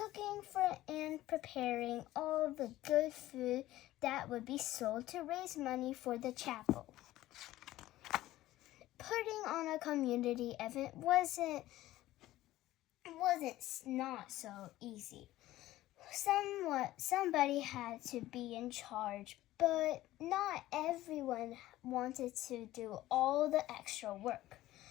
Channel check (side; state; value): right; quieter; 15.6 dB